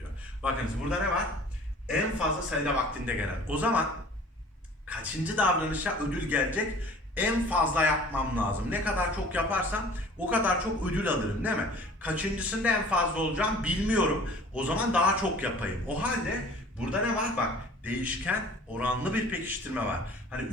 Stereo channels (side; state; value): both; normal; correlation 0.47